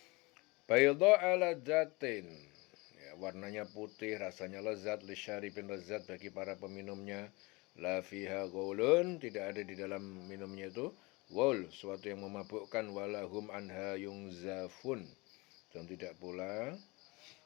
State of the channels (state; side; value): quieter; right; 24.9 dB